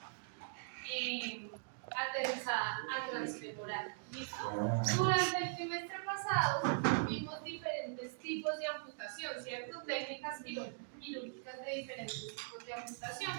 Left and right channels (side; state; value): left; silent; digital silence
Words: aterrizada a transfemoral. ¿Listo? Durante el trimestre pasado vimos diferentes tipos de amputación, ¿cierto? Técnicas quirúrgicas de diferentes tipos de amputación.